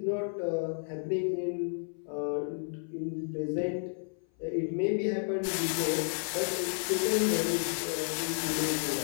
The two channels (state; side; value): silent; right; 57 dB below the other